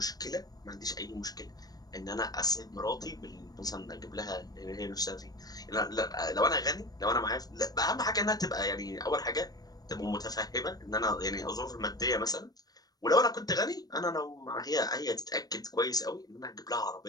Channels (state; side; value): late; right; 0.19 ms